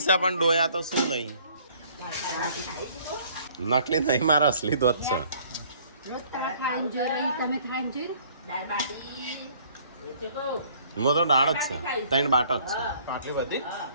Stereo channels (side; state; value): both; inverted; correlation -0.58